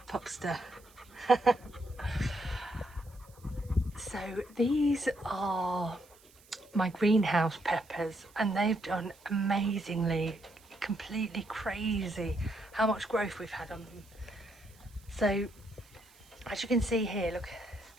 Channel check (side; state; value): right; noise; hiss, 27 dB below the sound